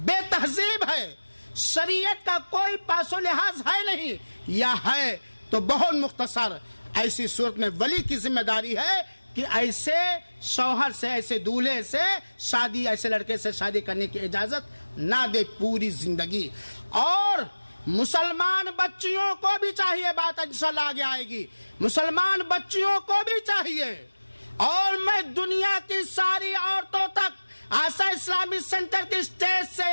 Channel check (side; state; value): both; inverted; correlation -1.00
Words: تہذیب ہے، شریعت کا کوئی پاس و لحاظ ہے نہیں، یا ہے تو بہت مختصر۔ ایسی صورت میں ولی کی ذمہ داری ہے کہ ایسے شوہر سے، ایسے دولہے سے شادی، ایسے لڑکے سے شادی کرنے کی اجازت نہ دے پوری زندگی۔ اور مسلمان بچیوں کو بھی چاہیے، بات انشاءاللہ آگے آئے گی، مسلمان بچیوں کو بھی چاہیے، اور میں دنیا کی ساری عورتوں تک آسا اسلامی سینٹر کی اسٹیج سے